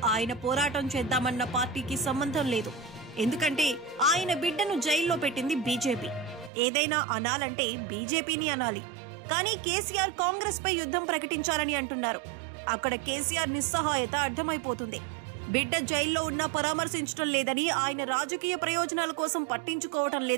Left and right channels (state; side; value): drops out; left; at 6.5 s